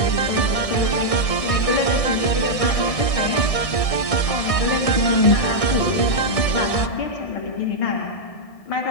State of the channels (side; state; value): right; late; 1.6 ms